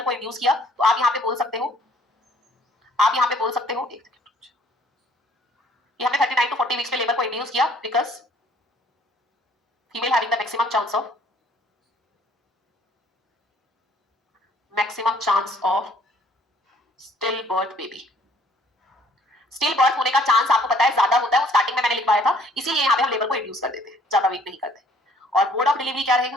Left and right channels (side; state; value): both; normal; correlation 0.60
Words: को इंड्यूस किया, तो आप यहाँ पे बोल सकते हो, आप यहाँ पे बोल सकते हो कि हमने 39 टू 40 वीक्स पे लेबर को इंड्यूस किया because female having the maximum chance of still birth baby. Still birth होने का चांस आपको पता है ज्यादा होता है, वो स्टार्टिंग में मैंने लिखवाया था, इसीलिए यहाँ पे हम लेबर को इंड्यूस कर देते हैं, ज्यादा वेट नहीं करते। और मोड ऑफ डिलीवरी क्या